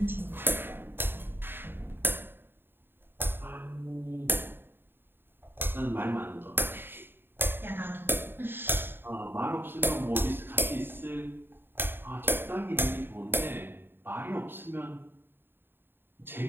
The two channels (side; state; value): left; late; 0.10 ms